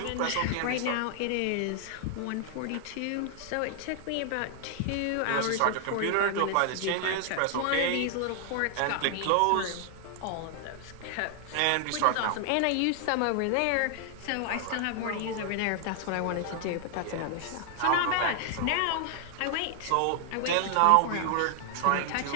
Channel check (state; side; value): different; both; correlation 0.00